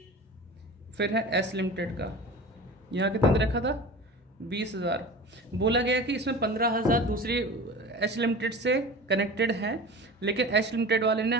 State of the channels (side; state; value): both; normal; correlation 0.36